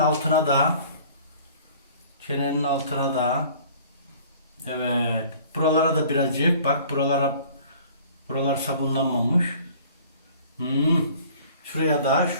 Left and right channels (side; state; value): both; inverted; correlation -0.50